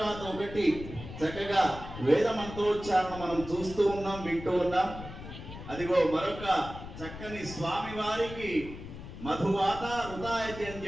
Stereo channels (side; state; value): left; noise; rumble, 12 dB below the sound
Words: ఒకటి చక్కగా వేద మంత్రోచ్చారణ మనం చూస్తూ ఉన్నాం, వింటూ ఉన్నాం. అదిగో మరొక చక్కని స్వామి వారికి మధువాత హృదయతి అని